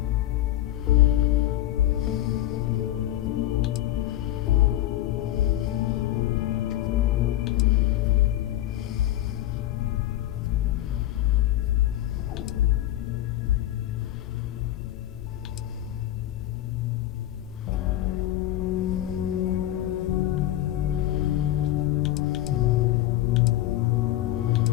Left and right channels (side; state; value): right; quieter; 14.0 dB